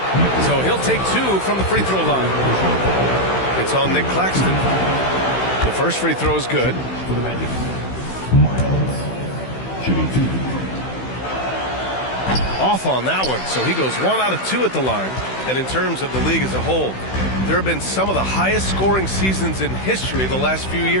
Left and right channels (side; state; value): right; late; 16 ms